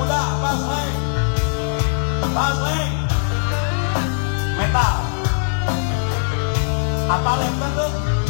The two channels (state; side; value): silent; right; 66 dB below the other